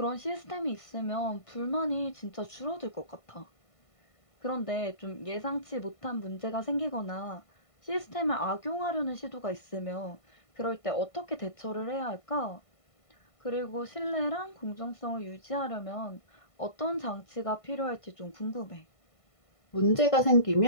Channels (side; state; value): right; late; 1.5 ms